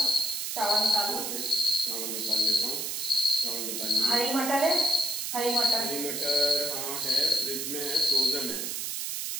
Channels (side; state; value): right; noise; hiss, 3 dB below the sound